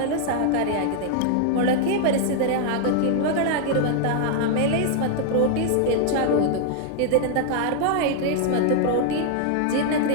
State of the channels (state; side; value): different; both; correlation 0.00